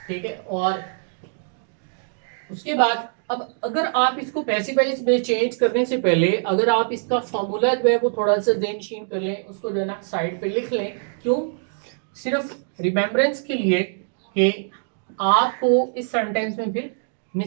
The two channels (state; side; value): silent; left; digital silence